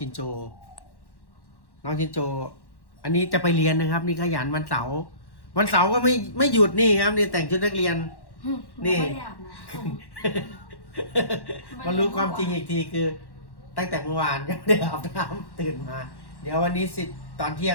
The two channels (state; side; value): late; right; 1.1 ms